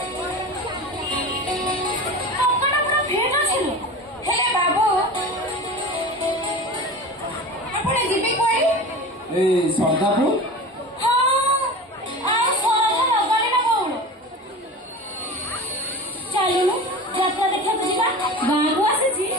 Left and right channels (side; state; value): both; normal; correlation 0.33